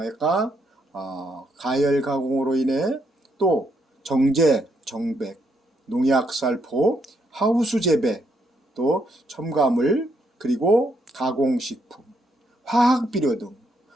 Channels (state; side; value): normal; both; correlation 0.75